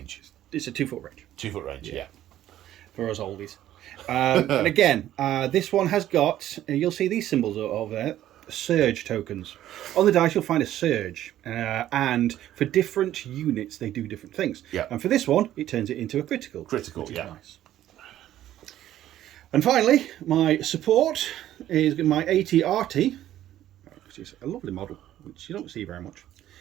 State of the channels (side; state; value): left; quieter; 12.7 dB